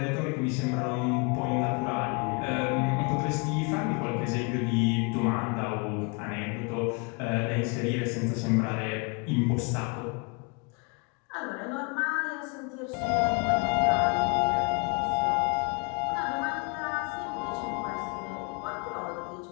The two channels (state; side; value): quieter; right; 32.7 dB